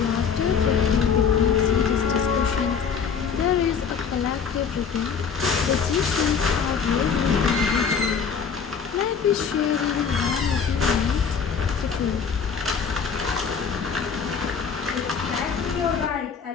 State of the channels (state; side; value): quieter; right; 6.4 dB